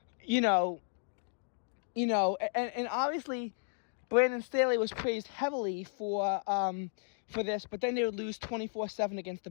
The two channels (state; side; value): silent; right; digital silence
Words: and obviously Brandon Staley was praised heavily for this, but then they would lose 24-7 against the